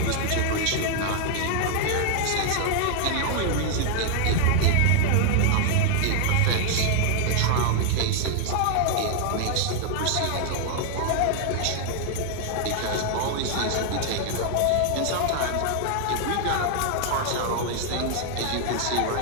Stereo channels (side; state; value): both; different; correlation 0.00